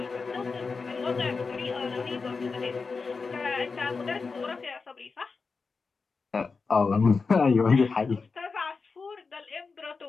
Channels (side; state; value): right; quieter; 4.6 dB